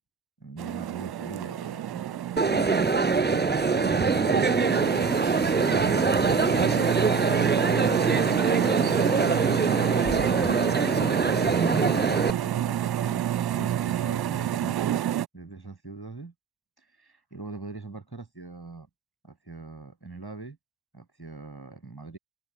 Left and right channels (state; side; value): quieter; left; 5.4 dB